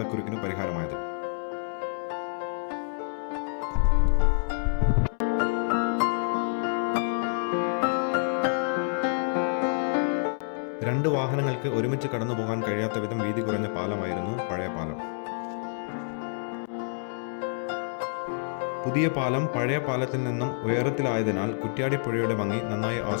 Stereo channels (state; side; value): silent; right; 59 dB below the other